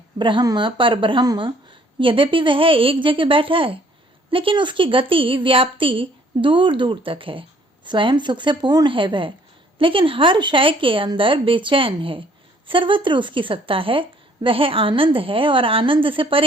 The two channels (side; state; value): both; normal; correlation 0.61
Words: ब्रह्म पर ब्रह्म, यद्यपि वह एक जगह बैठा है, लेकिन उसकी गति व्याप्ति दूर दूर तक है। स्वयं सुख से पूर्ण है वह, लेकिन हर शय के अंदर बेचैन है। सर्वत्र उसकी सत्ता है। वह आनंद है और आनंद से